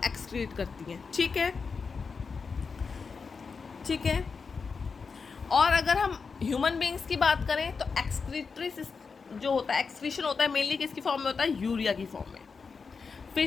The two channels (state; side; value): quieter; right; 5.1 dB